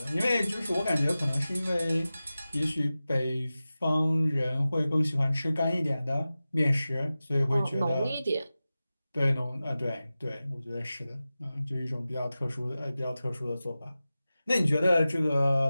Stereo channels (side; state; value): both; inverted; correlation -0.95